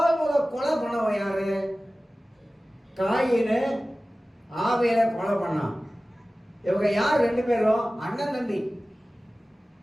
கொலை பண்ணவன் யாரு? காயினு ஆவியல கொலை பண்ணான். இவங்க யார்? 2 பேரும் அண்ணன் தம்பி.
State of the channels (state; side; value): normal; both; correlation 0.97